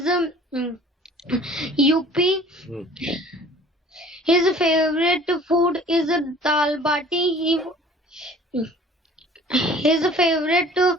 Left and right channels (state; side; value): normal; both; correlation 0.49